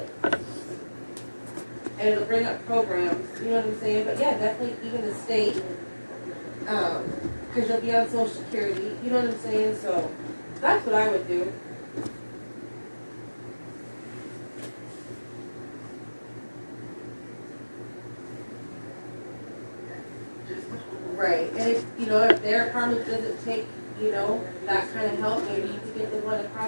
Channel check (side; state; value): both; inverted; correlation -1.00